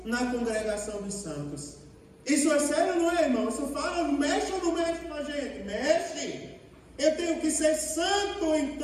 na congregação dos santos. Isso é sério, não é, irmão? Isso fala, mexe ou não mexe com a gente? Mexe. Eu tenho que ser santo em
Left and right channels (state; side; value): identical; both; correlation 1.00